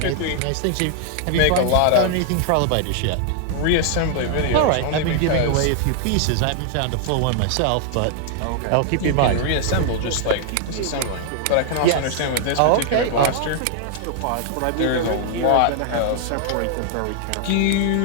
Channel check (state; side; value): different; both; correlation 0.00